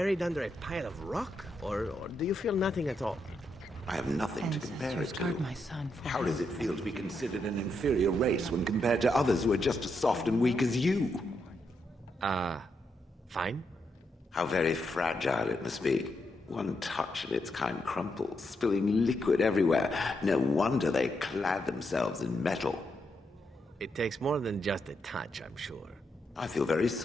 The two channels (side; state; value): both; normal; correlation 0.81